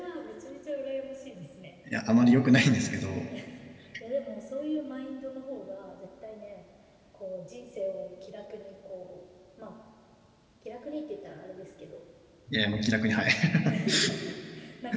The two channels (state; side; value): identical; both; correlation 1.00